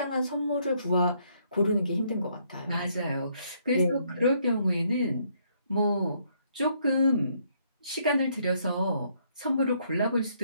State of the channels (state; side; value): inverted; both; correlation -0.70